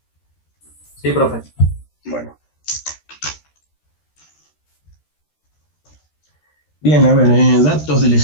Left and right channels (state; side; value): late; right; 13 ms